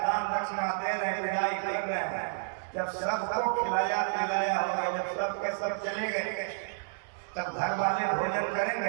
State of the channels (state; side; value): silent; left; digital silence